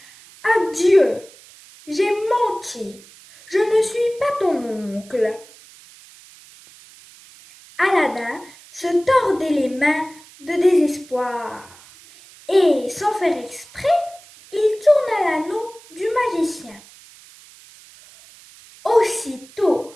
« Adieu, j'ai menti, je ne suis pas ton oncle. » Aladdin se tordait les mains de désespoir et, sans faire exprès, il tourna l'anneau du magicien. Aussitôt,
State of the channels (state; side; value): noise; right; hiss, 23 dB below the sound